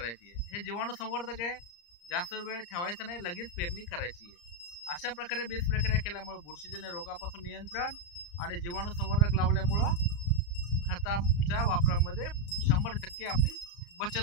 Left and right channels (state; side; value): late; right; 34 ms